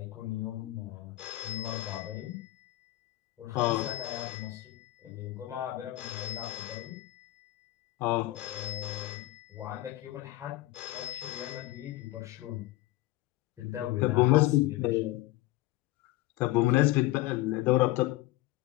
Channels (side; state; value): right; quieter; 17.5 dB